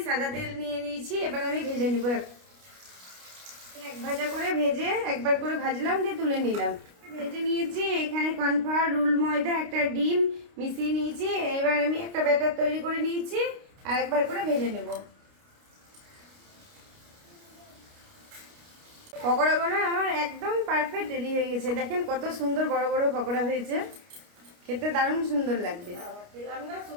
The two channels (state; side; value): late; left; 29 ms